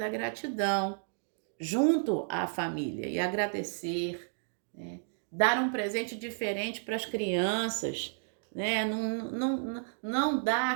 gratidão junto à família e agradecer, né? Dar um presente diferente para as crianças, né? Não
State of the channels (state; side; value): silent; left; digital silence